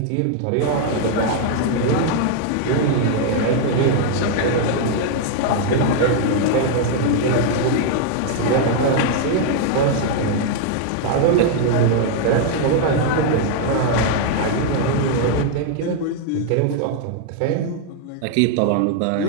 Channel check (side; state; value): both; different; correlation 0.00